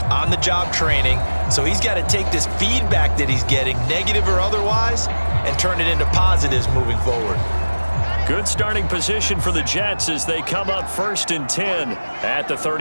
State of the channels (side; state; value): both; inverted; correlation -1.00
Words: on-the-job training, so he's got to take this feedback that he's getting, negative or otherwise, and turn it into positives moving forward. Good starting position for the Jets as they come up 1st and 10 at the